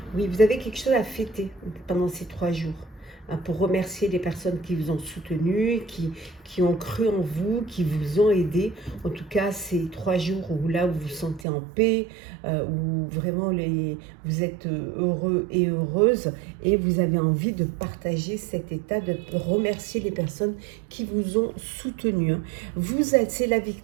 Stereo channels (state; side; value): drops out; left; at 11.5 s